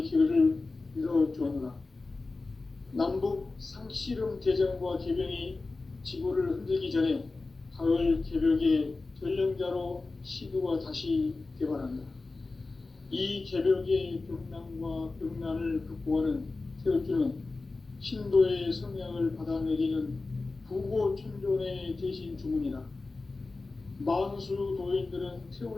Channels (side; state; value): right; quieter; 3.5 dB